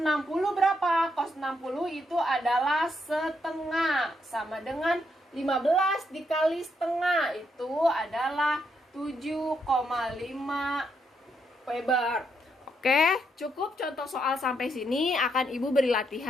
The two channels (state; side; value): normal; both; correlation 0.78